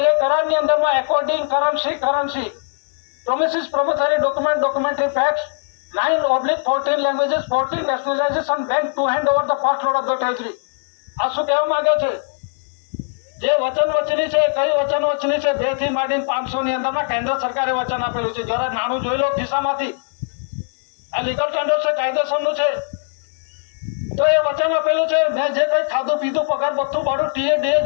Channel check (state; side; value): silent; right; 66 dB below the other